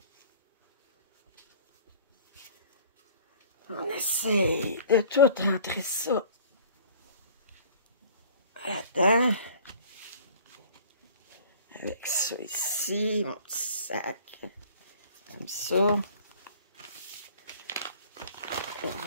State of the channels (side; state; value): both; inverted; correlation -0.49